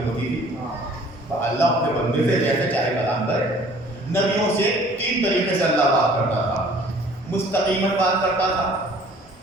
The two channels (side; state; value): both; normal; correlation 0.53